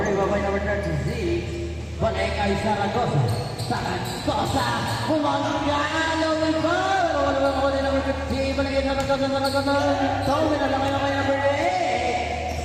by number 36. Balik kay Zaragoza. Zaragoza, kumangalo ng ball. Wala ba ako din number 15. Baligyan na Zaragoza. Tawin na lang kayo kay number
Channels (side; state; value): both; identical; correlation 1.00